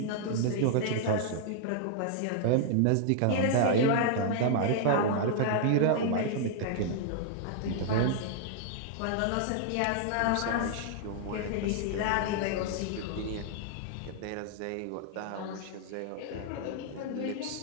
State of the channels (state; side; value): different; both; correlation -0.01